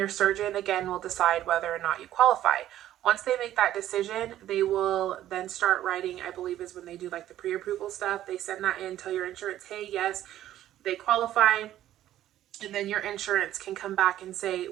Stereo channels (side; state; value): left; quieter; 12.7 dB